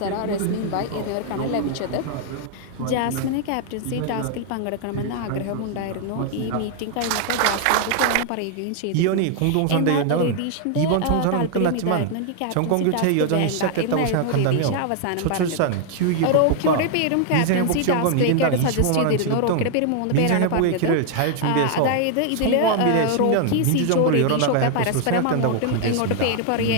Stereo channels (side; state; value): both; different; correlation 0.00